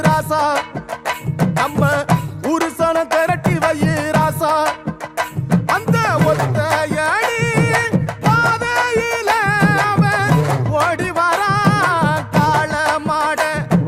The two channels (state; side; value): identical; both; correlation 1.00